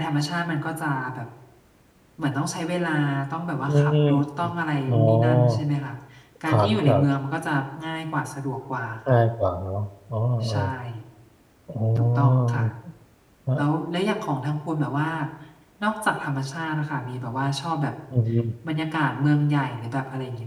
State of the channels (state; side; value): identical; both; correlation 1.00